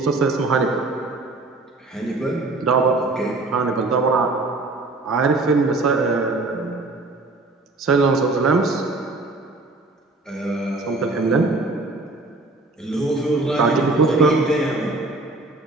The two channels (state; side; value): quieter; left; 3.2 dB